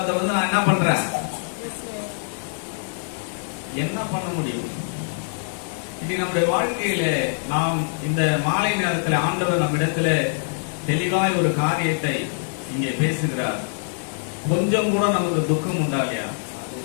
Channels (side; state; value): right; silent; digital silence